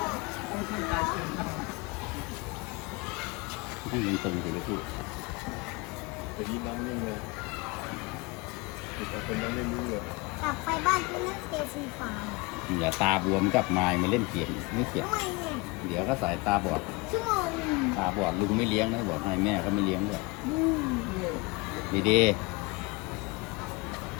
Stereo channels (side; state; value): right; quieter; 25.8 dB